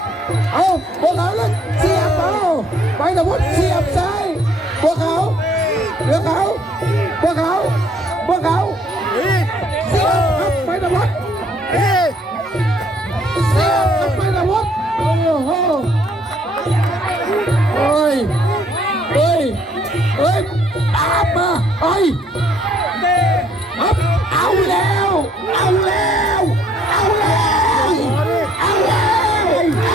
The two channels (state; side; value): normal; both; correlation 0.64